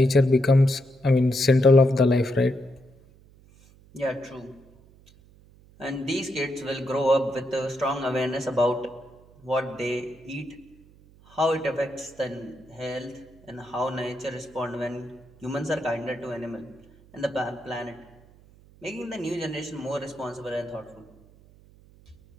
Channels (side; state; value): right; noise; hum, 26 dB below the sound